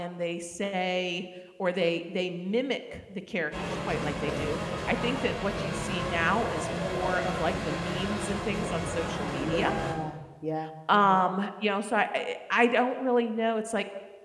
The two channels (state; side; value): identical; both; correlation 1.00